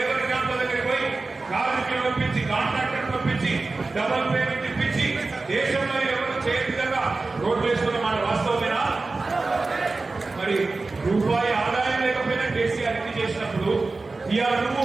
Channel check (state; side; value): quieter; left; 3.6 dB